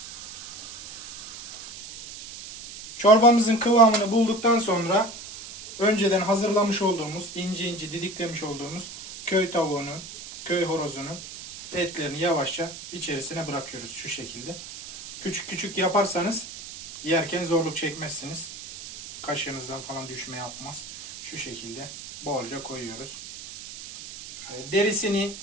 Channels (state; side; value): noise; right; hiss, 13 dB below the sound